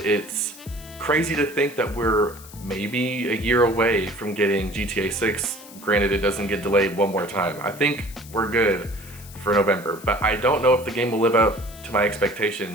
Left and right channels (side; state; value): left; noise; hiss, 19 dB below the sound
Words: crazy to think that we're maybe a year away from getting GTA 6. Granted, it doesn't get delayed one more time. I think we're good for November, but I don't know if the game will live up to my